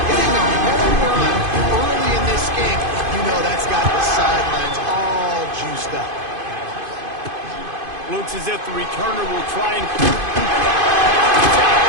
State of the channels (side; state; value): left; late; 2.5 ms